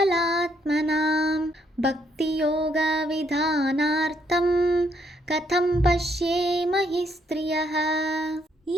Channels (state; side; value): normal; both; correlation 0.72